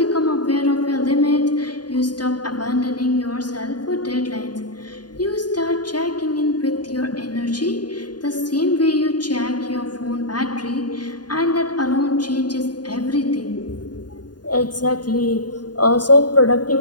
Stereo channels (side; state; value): right; late; 0.70 ms